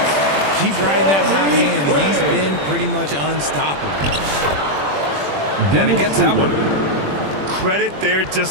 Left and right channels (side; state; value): left; late; 21 ms